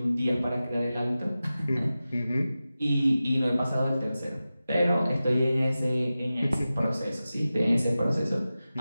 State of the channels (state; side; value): inverted; both; correlation -0.95